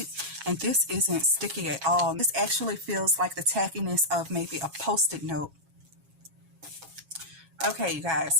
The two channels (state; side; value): late; left; 7.3 ms